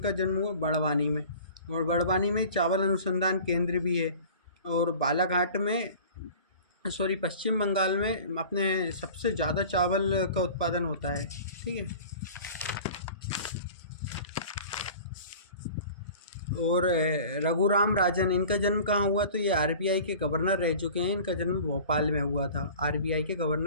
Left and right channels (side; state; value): both; inverted; correlation -0.43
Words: जन्म हुआ बड़वानी में, और बड़वानी में चावल अनुसंधान केंद्र भी है। और बालाघाट में पश्चिम बंगाल में अपने सबसे ज़्यादा चावल का उत्पादन होता है। ठीक है। और रघुराम राजन, इनका जन्म कहाँ हुआ? तो ये आरबीआई के गवर्नर रह चुके हैं। इनका जन्म भोपाल में हुआ था। आरबीआई के